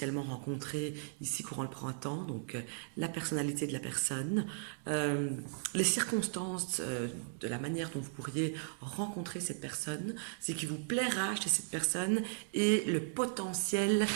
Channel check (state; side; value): silent; left; digital silence